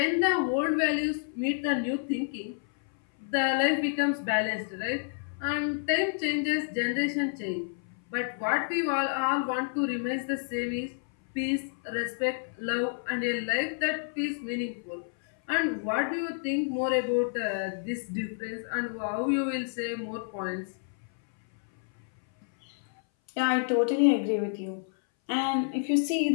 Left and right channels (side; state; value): right; silent; 58 dB below the other